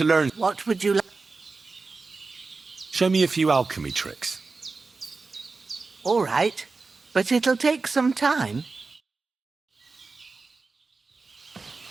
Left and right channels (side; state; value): left; quieter; 4.0 dB